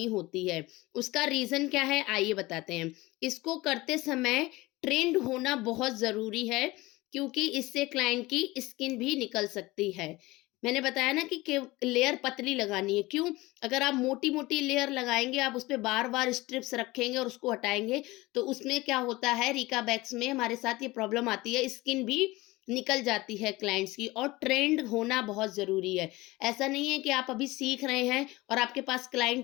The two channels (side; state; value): right; quieter; 20.5 dB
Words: होती है। उसका रीजन क्या है आइए बताते हैं। इसको करते समय ट्रेंड होना बहुत जरूरी है, क्योंकि इससे क्लाइंट की स्किन भी निकल सकती है। मैंने बताया ना कि लेयर पतली लगानी है। क्यों? अगर आप मोटी मोटी लेयर लगाएंगे, आप उस पर बार बार स्ट्रिप्स रखेंगे और उसको हटाएंगे, तो उसमें क्या होता है, रिका बैग्स में हमारे साथ ये प्रॉब्लम आती है, स्किन भी निकल जाती है क्लाइंट्स की। और ट्रेंड होना बहुत जरूरी है। ऐसा नहीं है कि आप अभी सीख रहे हैं और आपके पास